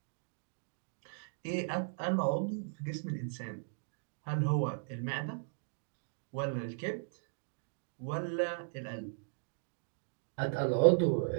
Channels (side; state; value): left; silent; digital silence